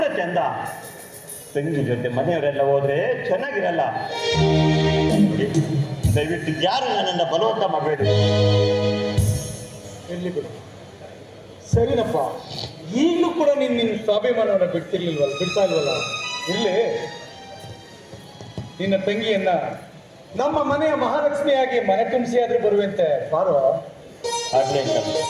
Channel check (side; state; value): both; identical; correlation 1.00